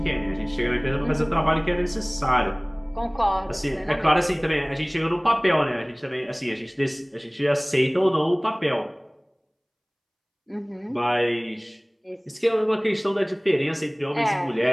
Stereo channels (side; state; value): both; identical; correlation 1.00